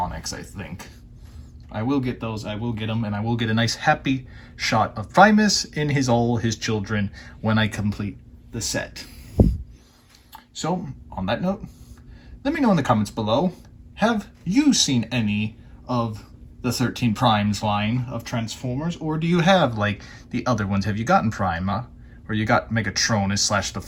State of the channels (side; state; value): both; identical; correlation 1.00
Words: I think. I will get those. I will get them, and I will get a nice happy shot of Primus in all his children when I complete the set. So, on that note, let me know in the comments below, have you seen any of the 13 Primes line of Transformers, or do you have, like, the other ones? Have you gotten Prima, or you got Megatronus / the